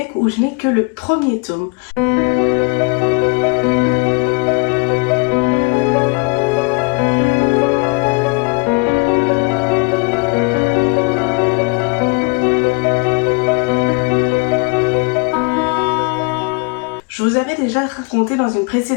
où je n'ai que le premier tome. Je vous avais déjà raconté dans une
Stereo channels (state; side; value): quieter; right; 31.8 dB